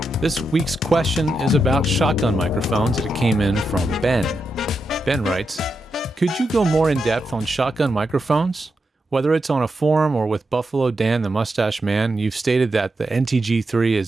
This week's question is about shotgun microphones, and it came in from Ben. Ben writes, could you go more in depth on shotgun microphones? Whether it's on a forum or with Buffalo Dan the Mustache Man, you've stated that the NTG3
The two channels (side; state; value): both; normal; correlation 0.86